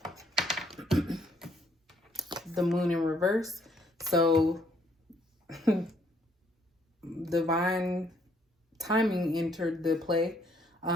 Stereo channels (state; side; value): normal; both; correlation 0.68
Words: The Moon in reverse. So divine timing entered the play.